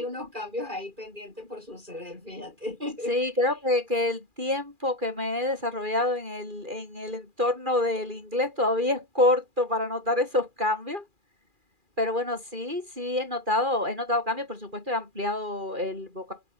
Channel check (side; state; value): left; late; 2.4 ms